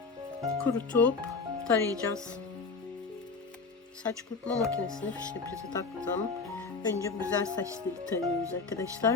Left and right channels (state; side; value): quieter; right; 4.4 dB